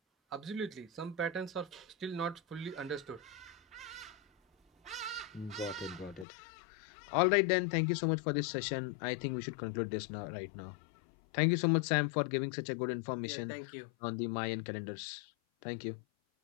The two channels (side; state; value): right; drops out; at 6.2 s